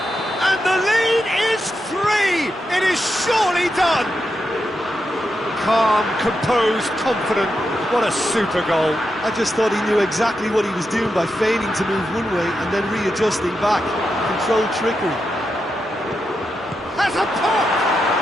And the lead is 3. It is surely done. Calm, composed, confident. What a super goal. I just thought he knew exactly what he was doing by feigning to move one way and then readjusting back. Controlled trickery. Has a pop!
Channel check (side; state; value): both; normal; correlation 0.86